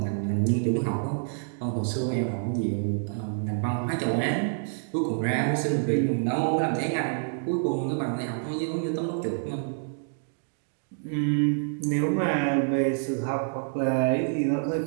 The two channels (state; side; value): silent; left; digital silence